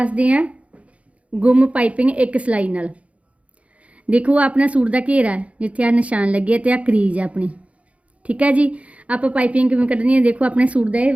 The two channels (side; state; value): left; late; 0.064 ms